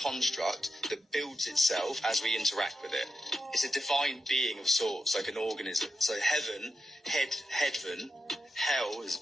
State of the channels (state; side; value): normal; both; correlation 0.88